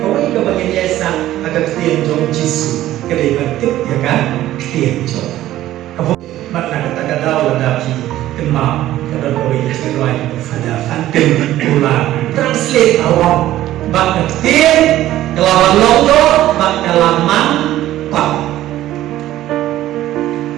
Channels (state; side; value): quieter; left; 14.1 dB